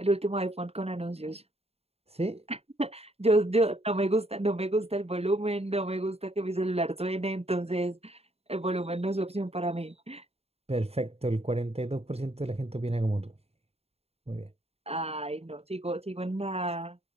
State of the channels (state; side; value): late; left; 0.30 ms